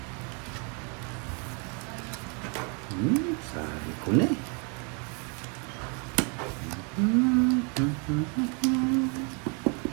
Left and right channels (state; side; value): quieter; left; 35.9 dB